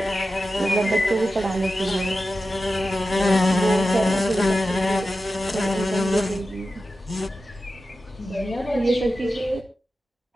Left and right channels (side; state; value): both; normal; correlation 0.93